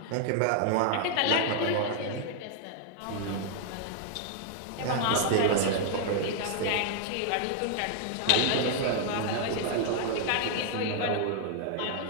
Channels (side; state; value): both; different; correlation 0.00